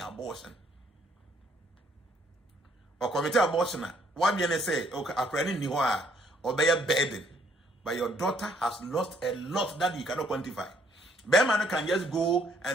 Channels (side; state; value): both; normal; correlation 0.66